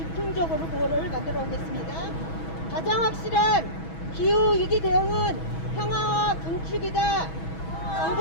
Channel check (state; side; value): late; right; 6.2 ms